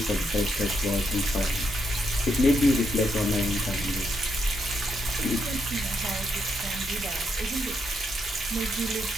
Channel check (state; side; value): normal; both; correlation 0.79